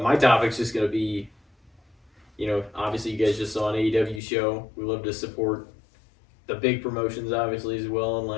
my topic's just gonna be, you know, obviously you guys just saw an AEW show. We love to support the big promotions, obviously, as well, and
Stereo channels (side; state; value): right; drops out; at 4.2 s